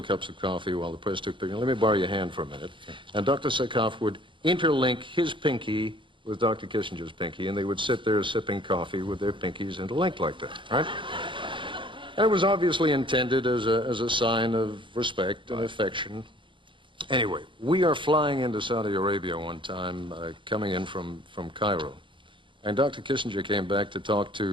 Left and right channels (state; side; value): late; left; 0.24 ms